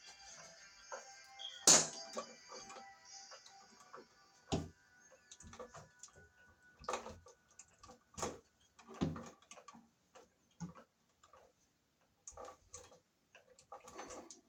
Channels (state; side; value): identical; both; correlation 1.00